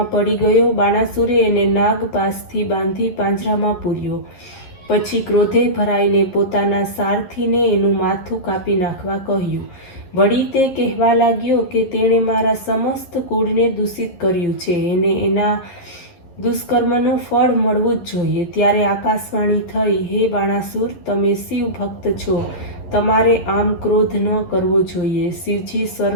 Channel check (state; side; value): late; right; 11 ms